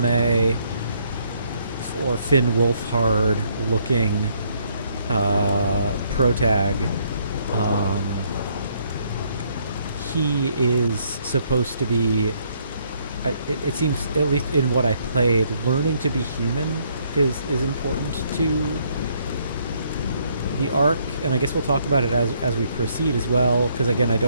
or Finn Wolfhard looking protag, he is supposed to be, it seems, at least in what I played, learning to be human is important to the arc, and I guess we'll talk about it as we proceed as well, because again, I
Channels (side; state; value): both; inverted; correlation -0.69